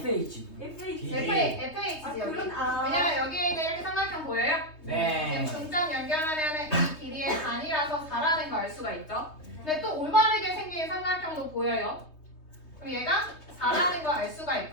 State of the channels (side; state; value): right; late; 3.2 ms